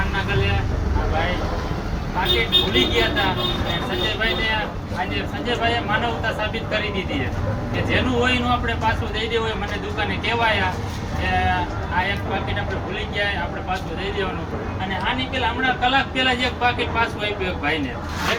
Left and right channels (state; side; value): identical; both; correlation 1.00